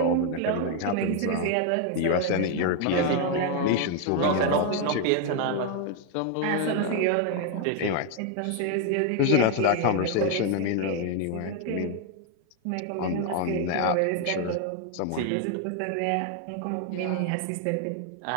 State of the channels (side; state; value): both; different; correlation 0.01